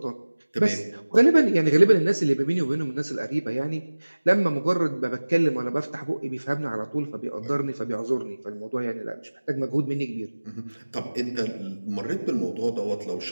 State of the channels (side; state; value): both; inverted; correlation -1.00